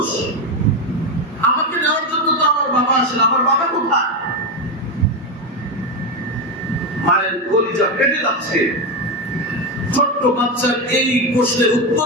আমাকে নেওয়ার জন্য তো আমার বাবা আসে না। আমার বাবা কোথায়? মায়ের কলিজা কেটে যাচ্ছে। ছোট্ট বাচ্চার এই প্রশ্নের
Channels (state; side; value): normal; both; correlation 0.11